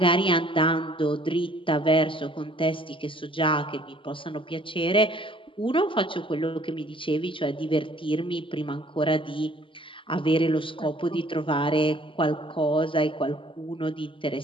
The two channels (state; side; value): late; right; 0.25 ms